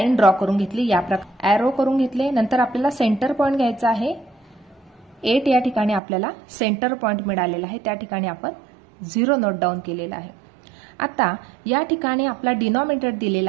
ड्रॉ करून घेतली। या प्रकारे ॲरो करून घेतले। नंतर आपल्याला सेंटर पॉइंट घ्यायचा आहे। 8 या ठिकाणी आपल्याला सेंटर पॉइंट मिळालेला आहे त्या ठिकाणी आपण 0 नोट डाऊन केलेला आहे। आता या ठिकाणी आपला डिनॉमिनेटर दिलेला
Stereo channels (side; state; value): left; drops out; at 6.0 s